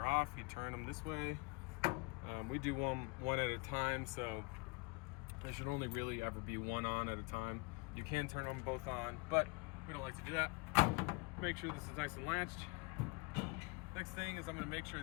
off, you turn them this way. We do one at a time, so there should only really ever be one on at a time. You can turn them both on, but we don't like to do that. Make sure this is nice and latched. Next thing is I'm going to make sure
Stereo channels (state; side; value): quieter; right; 28.5 dB